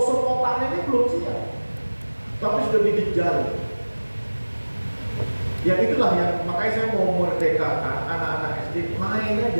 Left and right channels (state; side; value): inverted; both; correlation -1.00